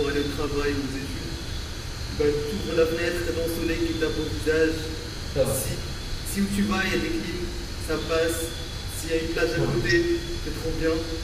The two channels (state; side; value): identical; both; correlation 1.00